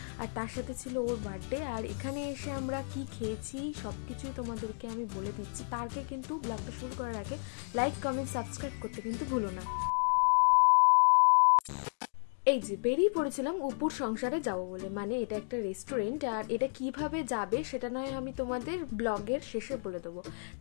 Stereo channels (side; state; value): right; silent; digital silence